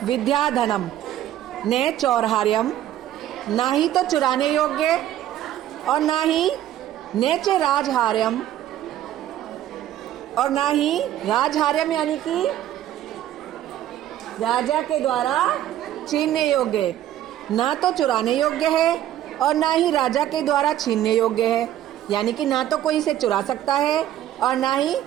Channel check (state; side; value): quieter; left; 12.3 dB